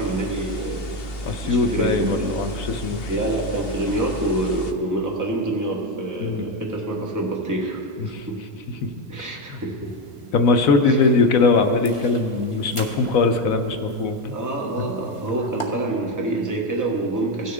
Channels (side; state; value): right; late; 1.4 ms